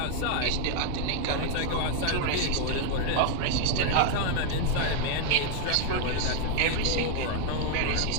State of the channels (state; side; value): different; both; correlation 0.01